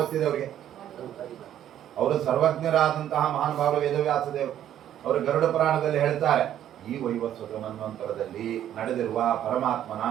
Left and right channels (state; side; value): quieter; left; 11.1 dB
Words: ಅವರಿಗೆ. ಅವರು ಸರ್ವಜ್ಞರಾದಂತಹ ಮಹಾನುಭಾವರು ವೇದವ್ಯಾಸ ದೇವರು. ಅವರು ಗರುಡ ಪುರಾಣದಲ್ಲಿ ಹೇಳ್ತಾರೆ, ಈ ವೈವಸ್ವತ ಮನ್ವಂತರದಲ್ಲಿ ನಡೆದಿರುವ ಪರಮಾತ್ಮನ